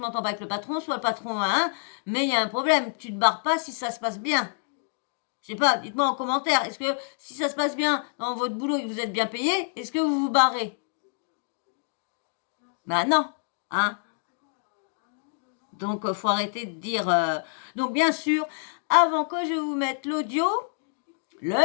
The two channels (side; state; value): right; silent; digital silence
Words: pas avec le patron, soit le patron a un, mais il y a un problème. Tu te barres pas si ça se passe bien. Je sais pas, dites-moi en commentaire, est-ce que si ça se passe bien dans votre boulot et que vous êtes bien payé, est-ce que vous vous barrez? Ben non, hein. Donc, faut arrêter de dire. Donc, bien sûr, avant que je vous mette l'audio,